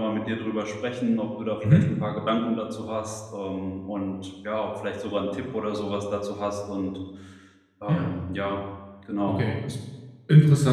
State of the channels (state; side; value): identical; both; correlation 1.00